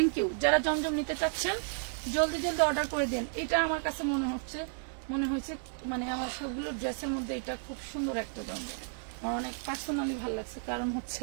you. যারা জমজম নিতে চাচ্ছেন জলদি জলদি অর্ডার করে দেন। এটা আমার কাছে মনে হয়েছে মানে আমার সবগুলো ড্রেসের মধ্যে এটা খুব সুন্দর একটা জমজম, আমার অনেক পার্সোনালি ভালো লাগছে, কারণ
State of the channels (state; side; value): silent; left; 56 dB below the other